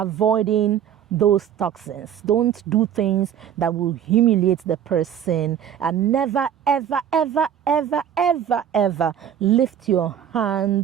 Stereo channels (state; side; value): quieter; left; 9.4 dB